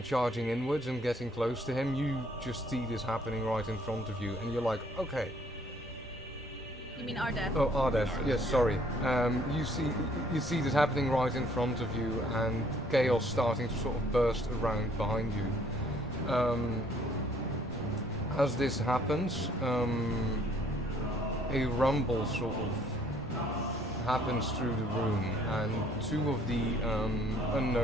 charging inwards and getting close to him, you just see this happening right in front of you, and you're like, okay. You mean Ardeth? Oh, Ardeth, yes, sorry. You see this happening right in front of you, and chaos starting to sort of burst around behind you. As this happens, a rumble sort of happens through the room, and 2 of the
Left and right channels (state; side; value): normal; both; correlation 0.62